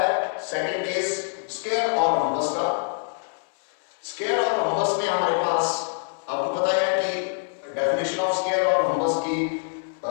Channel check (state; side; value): silent; right; 60 dB below the other